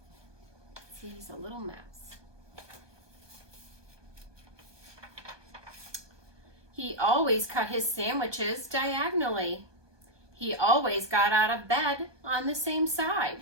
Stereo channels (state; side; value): late; left; 1.2 ms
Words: See, he's a little mouse. He always cut his sandwiches diagonally. He always got out of bed on the same side.